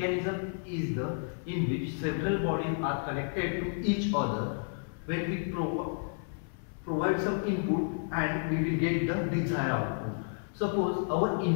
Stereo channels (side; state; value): right; silent; 57 dB below the other